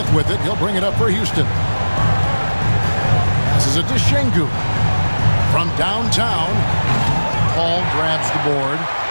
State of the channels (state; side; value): inverted; both; correlation -1.00